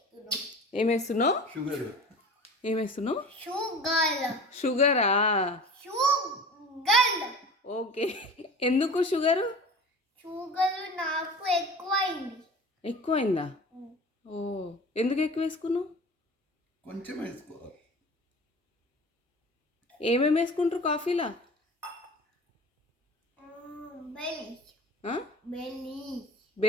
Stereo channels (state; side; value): normal; both; correlation 0.39